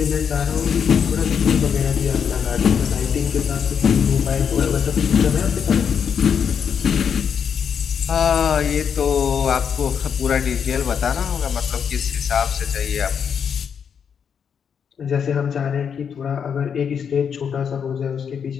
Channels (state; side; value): quieter; right; 7.3 dB